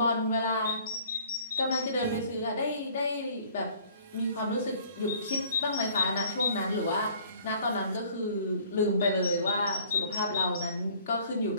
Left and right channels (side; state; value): both; inverted; correlation -0.55